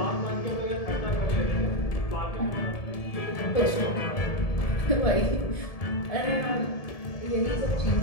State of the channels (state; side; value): late; right; 1.7 ms